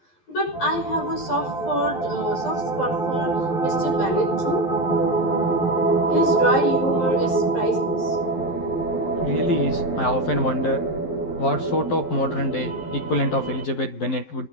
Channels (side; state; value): right; late; 12 ms